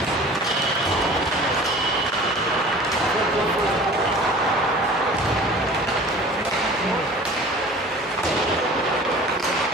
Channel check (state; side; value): normal; both; correlation 0.44